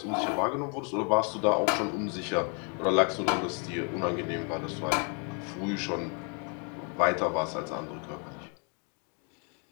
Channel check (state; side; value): quieter; right; 37.4 dB